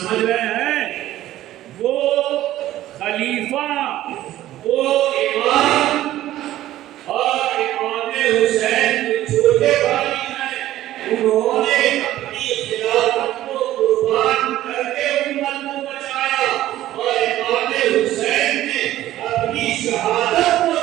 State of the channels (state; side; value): quieter; left; 14.1 dB